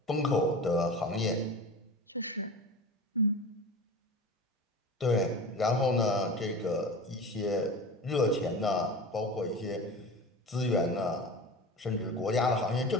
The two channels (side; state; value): both; normal; correlation 0.33